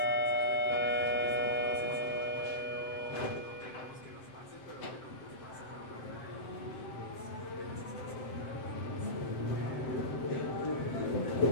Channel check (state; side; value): late; right; 7.7 ms